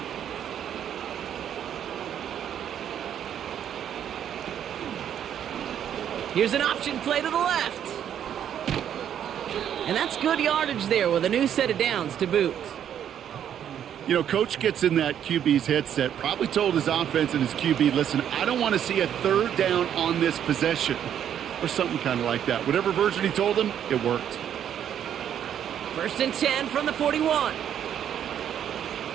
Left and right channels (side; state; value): left; quieter; 9.6 dB